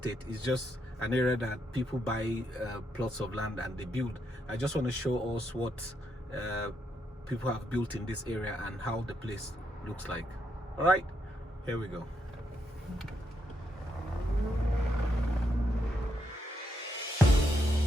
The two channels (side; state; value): both; normal; correlation 0.79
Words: it's just an area that people buy plots of land and they build. I just want to show us what people have built in this area and how the place looks like. All right, here we go.